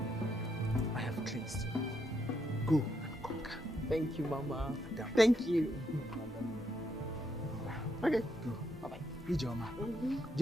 I have cleansed you. Go and conquer. Thank you, Mama. Madam. Thank you. Okay. Go. Bye-bye. Ijoma.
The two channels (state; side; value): normal; both; correlation 0.78